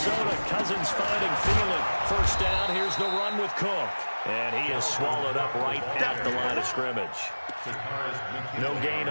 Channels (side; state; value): both; inverted; correlation -1.00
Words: Cousins finding Thielen. First down, here's the run with Cook. And he is swallowed up right at the line of scrimmage. No gain